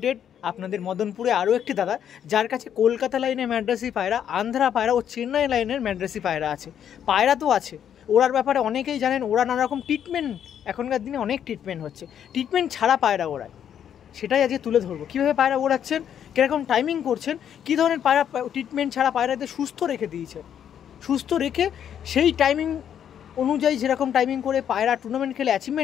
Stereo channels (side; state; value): right; quieter; 9.2 dB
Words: আপনাদের মদনপুরে আরও একটি দাদা, যার কাছে কলকাতা লাইনের ম্যাড্রাসি পায়রা, আন্ধ্রা পায়রা ও চেন্নাই লাইনের ম্যাড্রাসি পায়রা আছে। পায়রা তো আছে, ওড়ার ব্যাপারে অনেকেই জানেন। ওরা নানা রকম ট্রিটমেন্ট, এখনকার দিনে অনেক ট্রিটমেন্ট হচ্ছে, ট্রিটমেন্ট ছাড়া পায়রা ওড়ায়, সেটাই আজকে তুলে ধরবো। কীভাবে পায়রা ওড়াচ্ছেন, কীরকম টাইমিং করছেন, কী ধরনের পায়রা ট্রিটমেন্ট ছাড়া পায়রাদের সুস্থ রেখে দিয়েছে, সুস্থ রেখে সেই টাইমিং অনুযায়ী যেরকম টাইমিং করে পায়রা টুর্নামেন্ট খেলে